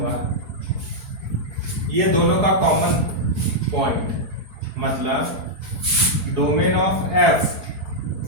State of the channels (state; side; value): late; left; 4.6 ms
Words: ये दोनों का कॉमन पॉइंट, मतलब domain of f